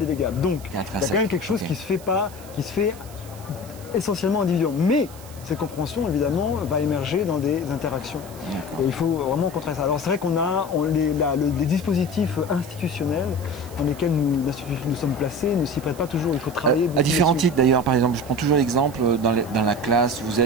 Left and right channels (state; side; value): noise; right; hiss, 20 dB below the sound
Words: Donc il y a quand même quelque chose qui se fait essentiellement individuellement. Mais cette compréhension, évidemment, va émerger dans des interactions. Et il faut vraiment contrer ça. Alors c'est vrai qu'on a les dispositifs institutionnels dans lesquels nous sommes placés ne s'y prêtent pas toujours. Il faut travailler à différents titres d'ailleurs. Par exemple, je prends toujours l'exemple dans la classe, vous